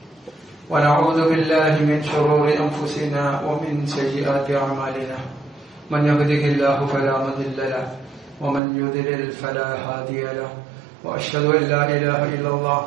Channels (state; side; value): drops out; left; at 8.6 s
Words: ونعوذ بالله من شرور أنفسنا ومن سيئات أعمالنا من يهده الله فلا مضل له ومن يضلل فلا هادي له وأشهد أن لا إله إلا الله